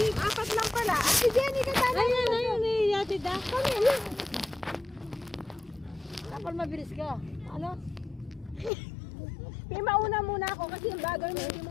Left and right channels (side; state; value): right; drops out; at 8.7 s